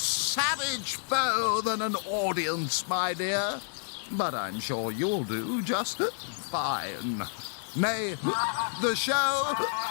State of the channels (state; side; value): silent; right; digital silence